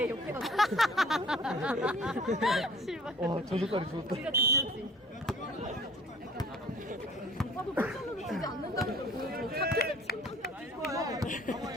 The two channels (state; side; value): normal; both; correlation 0.52